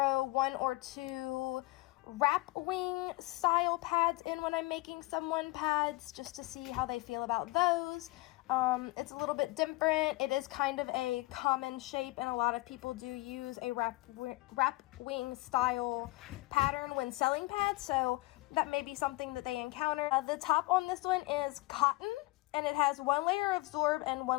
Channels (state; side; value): quieter; right; 21.7 dB